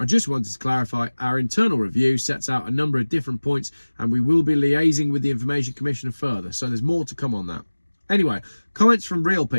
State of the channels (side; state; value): both; inverted; correlation -1.00